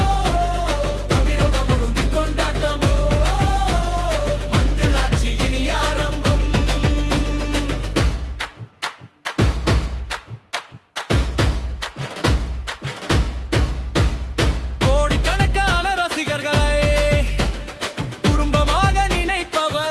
தமிழகம் முழுங்கி கொண்டாட்டம், மஞ்சளாட்சி இனி ஆரம்பம். கோடிக்கணக்கான ரசிகர்களை குடும்பமாக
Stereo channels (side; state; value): both; identical; correlation 1.00